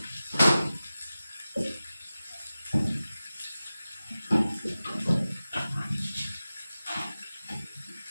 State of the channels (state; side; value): inverted; both; correlation -0.96